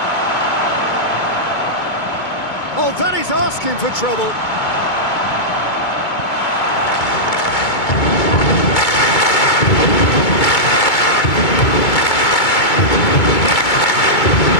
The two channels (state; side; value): late; right; 2.2 ms